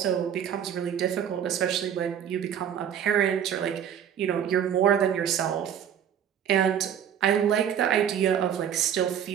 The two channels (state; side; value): quieter; left; 9.1 dB